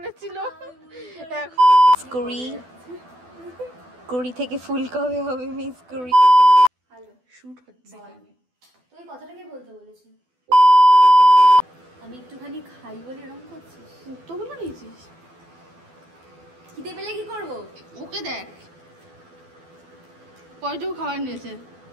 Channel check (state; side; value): late; left; 12 ms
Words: কুড়ি থেকে ফুল কবে হবে মিস কুড়ি। হ্যালো, শুট হচ্ছে এখানে। তুই কথাটা কি বলতে বলেছিস? আমি একটুখানি খাই বলে এরকম করছিস? মুক্তগুলো নিয়েছিস? খিদে পেলে কি করবো? ওকে দেখ কয়টুকু খাবার নিয়েছে।